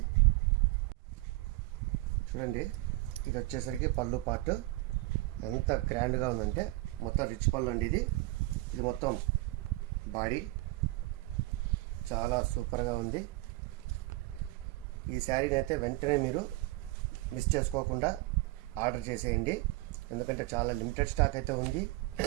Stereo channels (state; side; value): quieter; left; 20.3 dB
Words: చూడండి, ఇది వచ్చేసరికి పళ్ళు పార్ట్ ఎంత గ్రాండ్గా ఉందంటే మొత్తం రిచ్ పళ్ళు అండి. ఇది మొత్తం బాడీ చాలా సూపర్గా ఉంది. ఈ శారీని అయితే వెంటనే మీరు మిస్ చేసుకోకుండా ఆర్డర్ చేసేయండి, ఎందుకంటే చాలా లిమిటెడ్ స్టాక్ అయితే ఉంది.